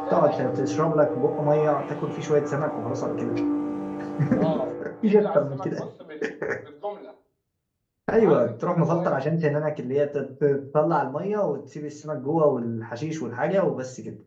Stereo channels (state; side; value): identical; both; correlation 1.00